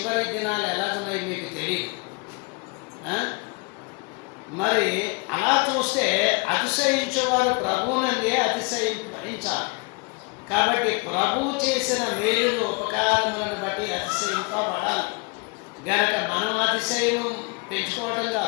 దినాలు ఎలాగున్నాయి మీకు తెలియదు. మరి అలా చూస్తే అతిశయించేవారు ప్రభువునందే అతిశయించాలి. కాబట్టి ప్రభువు చేసిన మేలులు, ఉపకారములను బట్టి అతిశయింపబడాలి. గనక మనం అతిశయం పెంచుకోవటం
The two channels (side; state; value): right; quieter; 30.2 dB